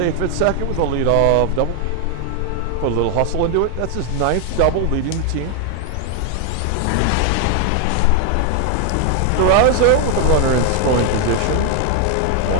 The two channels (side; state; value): both; different; correlation 0.00